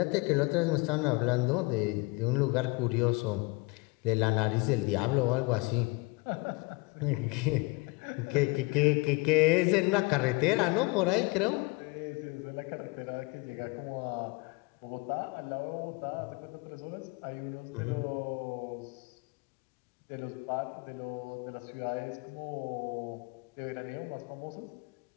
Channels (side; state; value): right; quieter; 27.0 dB